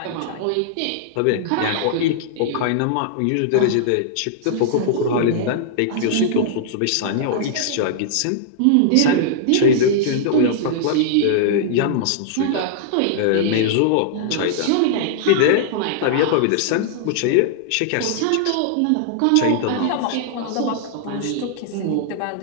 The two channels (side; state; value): both; different; correlation -0.01